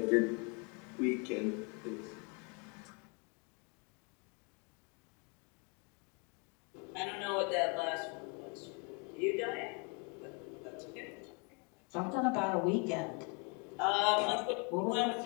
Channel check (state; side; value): quieter; right; 33.7 dB